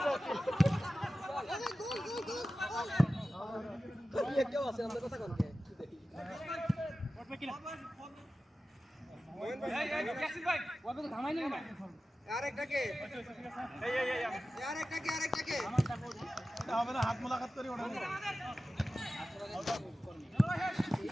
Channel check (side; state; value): both; normal; correlation 0.94